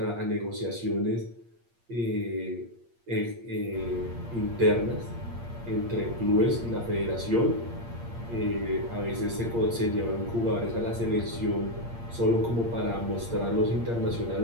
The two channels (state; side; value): late; left; 8.6 ms